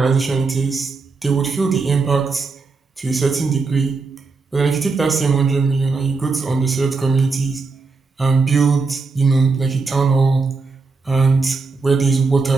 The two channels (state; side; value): quieter; left; 4.2 dB